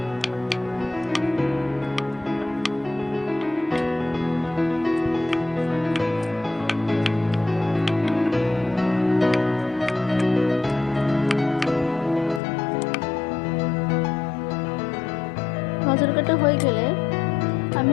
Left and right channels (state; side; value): drops out; right; at 12.4 s